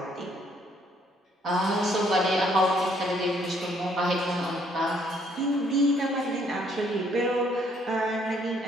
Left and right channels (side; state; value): both; normal; correlation 0.66